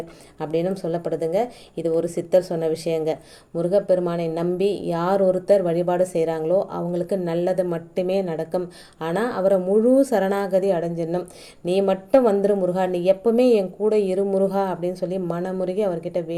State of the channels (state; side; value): identical; both; correlation 1.00